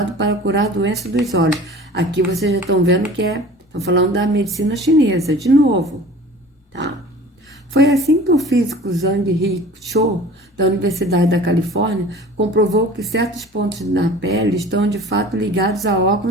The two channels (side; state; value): both; normal; correlation 0.43